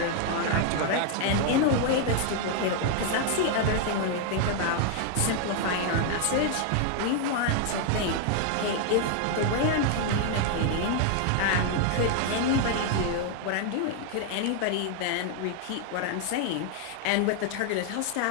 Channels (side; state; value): both; different; correlation 0.00